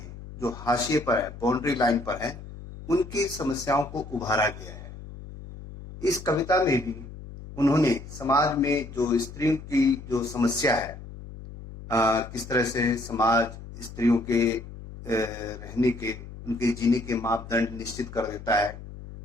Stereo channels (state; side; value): noise; left; hum, 14 dB below the sound